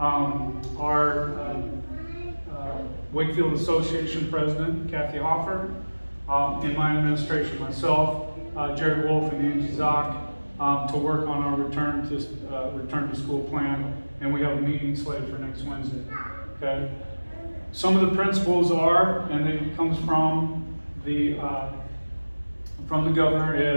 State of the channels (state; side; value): inverted; both; correlation -1.00